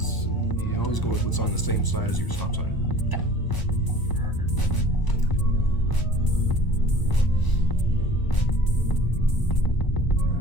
you always go with what's on the same side as your stop sign. Okay. Perfect.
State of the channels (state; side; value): late; right; 1.0 ms